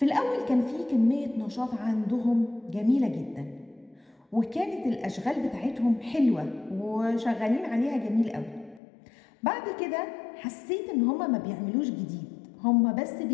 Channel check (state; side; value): drops out; right; at 8.8 s